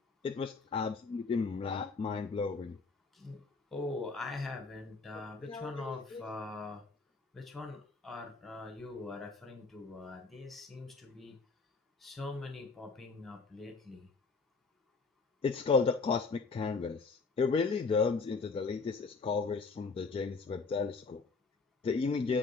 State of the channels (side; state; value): right; quieter; 4.3 dB